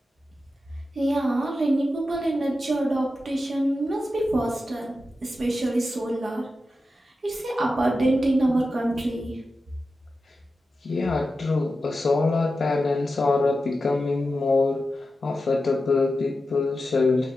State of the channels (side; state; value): both; normal; correlation 0.91